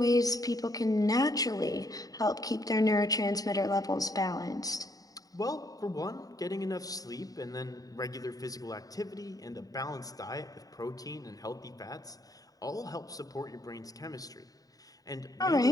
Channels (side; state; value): right; late; 0.18 ms